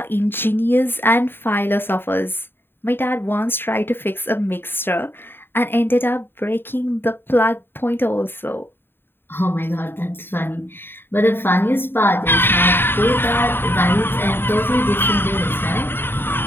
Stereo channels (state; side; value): late; right; 0.10 ms